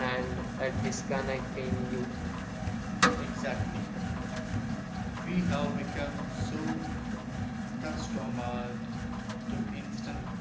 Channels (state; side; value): identical; both; correlation 1.00